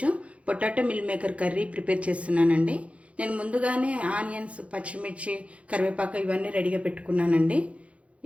potato meal maker curry prepare చేస్తున్నానండి. నేను ముందుగానే ఆనియన్స్, పచ్చిమిర్చి, కరివేపాకు ఇవన్నీ రెడీగా పెట్టుకున్నానండి.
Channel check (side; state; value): left; late; 0.063 ms